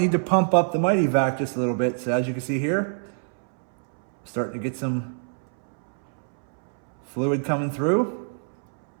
to pump up the MITYVAC just a little bit. So as you can see here, starting to get some fluid coming through.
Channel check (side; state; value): left; silent; 62 dB below the other